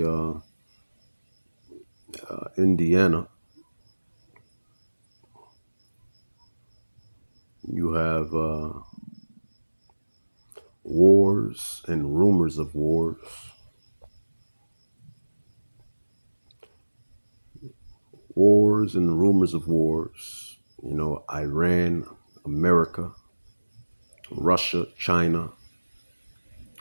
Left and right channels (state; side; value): inverted; both; correlation -1.00